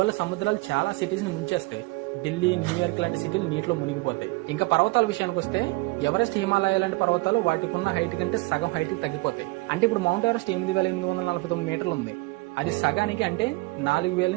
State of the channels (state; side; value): quieter; left; 24.1 dB